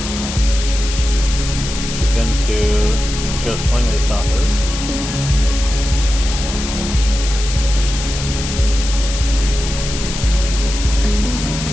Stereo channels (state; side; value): noise; left; hiss, 7 dB below the sound